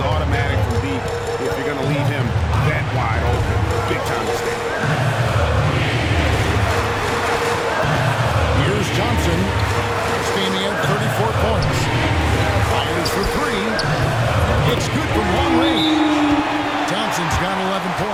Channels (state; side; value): identical; both; correlation 1.00